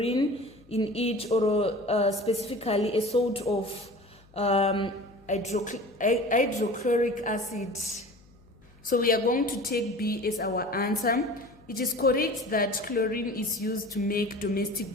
in it, or specifically a sort of hydrochloric acid. So we are going to take B as our answer. It is correct that chlorine is used to make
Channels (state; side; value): noise; left; hum, 28 dB below the sound